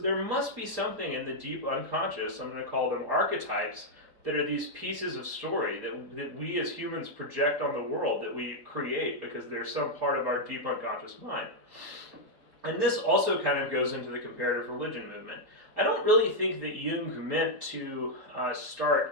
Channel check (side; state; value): left; late; 4.3 ms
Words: must be something in the deep unconscious, I'm going to call them archetypes, that are these pieces of story that we as humans project on the world, that we create because they're some part of our deep unconscious mind. And this also kind of goes into the comparative religion movement. I don't really think that Jung meant to